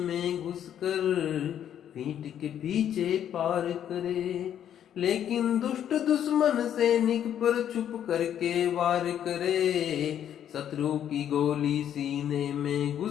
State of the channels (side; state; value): right; quieter; 9.9 dB